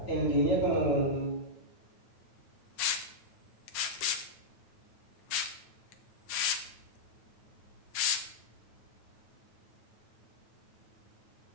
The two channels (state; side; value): late; right; 9.2 ms